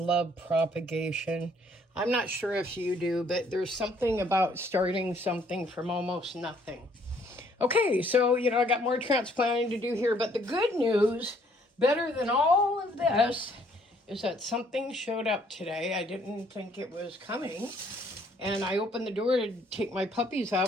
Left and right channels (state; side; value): normal; both; correlation 0.64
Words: propagation. I'm not sure if you do, but there's something about starting something from almost nothing. Okay, so, I got more transplanting to do here, but the good news, better than all of this, is that something showed up today. I didn't think it was coming. And I opened the door to take my puppies